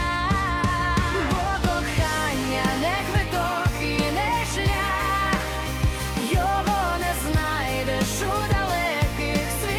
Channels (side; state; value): both; identical; correlation 1.00